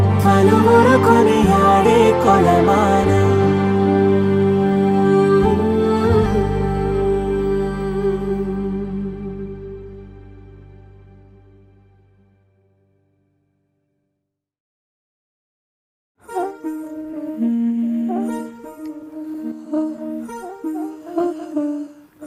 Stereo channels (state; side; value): identical; both; correlation 1.00